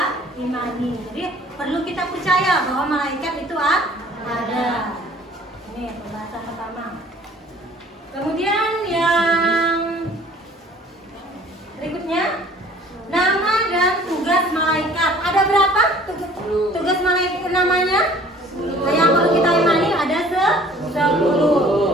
imani. Jadi perlu kita percaya bahwa malaikat itu ada. Ini pembahasan pertama. Kemudian yang berikutnya, nama dan tugas malaikat. Ada berapa tugas malaikat namanya? Yang perlu kita imani ada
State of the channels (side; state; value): both; normal; correlation 0.52